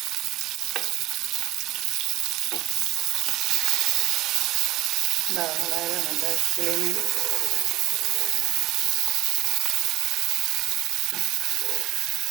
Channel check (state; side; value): quieter; left; 16.6 dB